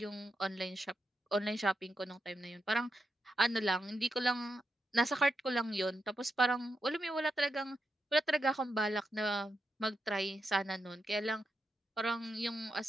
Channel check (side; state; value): both; normal; correlation 0.86